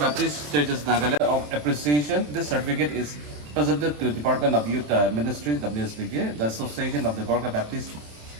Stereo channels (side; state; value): left; late; 27 ms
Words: Churches Nagaland of Appreciation. This certificate is presented to Department of Youth Ministry, WSBK. The Association of the Gorkha Baptist